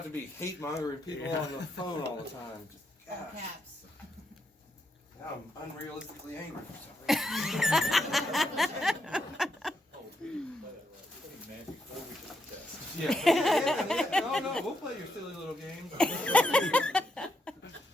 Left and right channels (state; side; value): normal; both; correlation 0.79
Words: to be hate mongering people Yeah. on the phone all the time. All Gosh, caps. now I'm unrealistically angry for some reason. Oh, we didn't play that right. We didn't man before we took the test. Yeah. No, we'll play your silly little game.